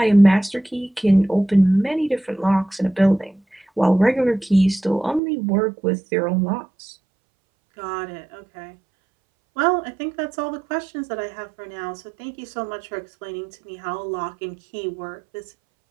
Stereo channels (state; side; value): drops out; left; at 5.2 s